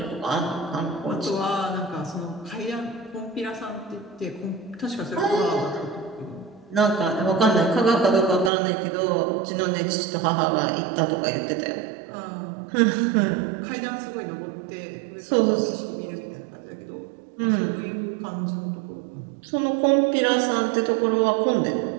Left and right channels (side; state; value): left; drops out; at 8.5 s